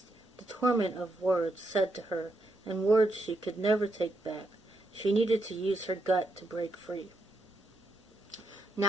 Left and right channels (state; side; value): normal; both; correlation 0.81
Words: the torment of words said to her, and words she could never take back. She needed to use her gut to break free.